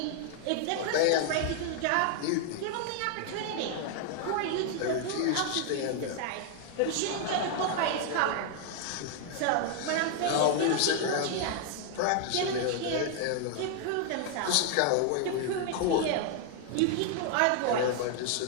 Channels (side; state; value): both; different; correlation 0.00